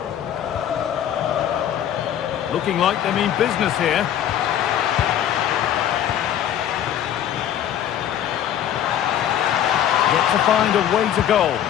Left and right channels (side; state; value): right; quieter; 10.5 dB